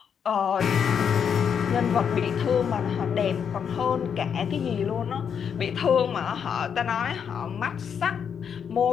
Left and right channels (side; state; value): right; quieter; 7.5 dB